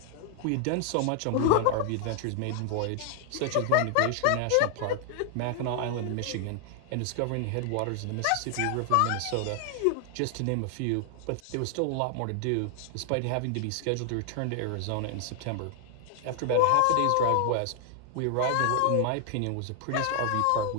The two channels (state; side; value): different; both; correlation 0.00